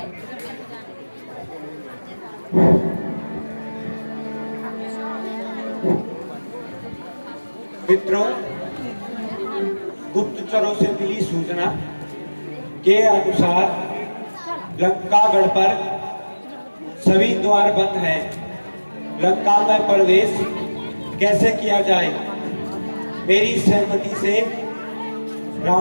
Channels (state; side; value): inverted; both; correlation -1.00